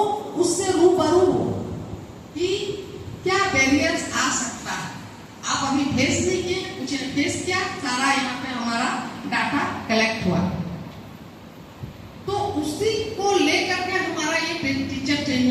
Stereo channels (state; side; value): identical; both; correlation 1.00